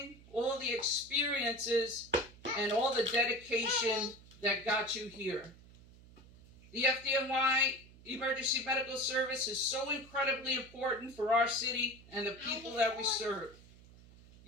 all the experiences, and all the dedication that got you here. The FDNY Emergency Medical Service is so incredibly important for our city and the people that we serve.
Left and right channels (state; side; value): noise; right; hum, 22 dB below the sound